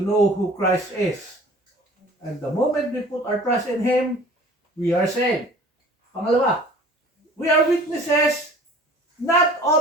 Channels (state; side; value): normal; both; correlation 0.47